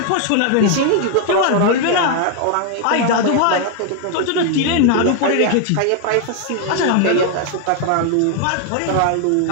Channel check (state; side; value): different; both; correlation 0.00